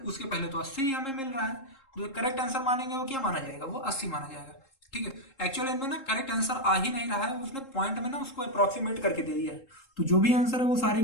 उसके पहले तो 80 ही हमें मिल रहा है। तो करेक्ट आंसर मानेंगे वो क्या माना जाएगा, वो 80 माना जाएगा। ठीक है, एक्चुअली इनमें ना करेक्ट आंसर आ ही नहीं रहा है, उसने पॉइंट में ना उसको अप्रोक्सीमेट करके दे दिया है, तो जो भी आंसर है वो सारे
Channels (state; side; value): late; right; 3.7 ms